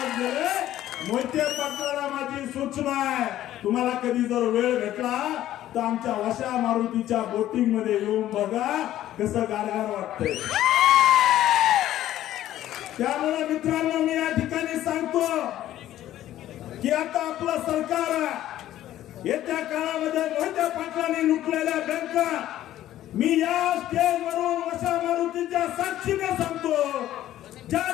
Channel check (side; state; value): right; quieter; 13.1 dB